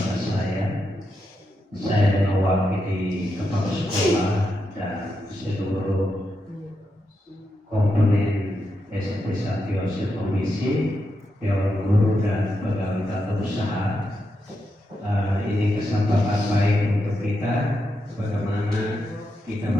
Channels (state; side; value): normal; both; correlation 0.85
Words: saya. Saya mewakili kepala sekolah dan seluruh komponen SMP Santi Yosef Komisi, Dewan Guru dan pegawai tata usaha. Ini kesempatan baik untuk kita bagaimana kita